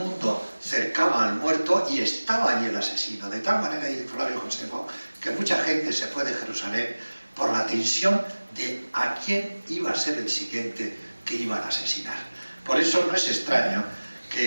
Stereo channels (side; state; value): both; inverted; correlation -1.00